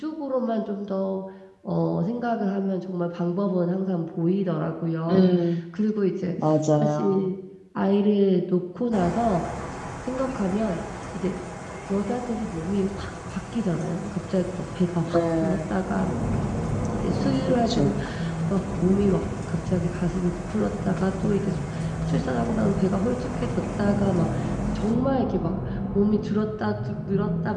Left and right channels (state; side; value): identical; both; correlation 1.00